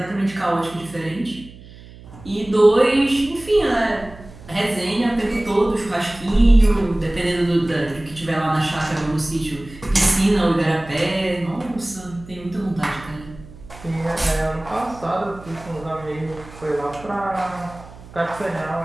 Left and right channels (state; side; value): noise; right; hum, 19 dB below the sound